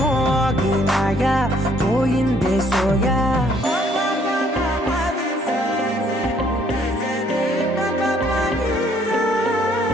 మోగినాయా పోయిందే సోయా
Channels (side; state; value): both; normal; correlation 0.64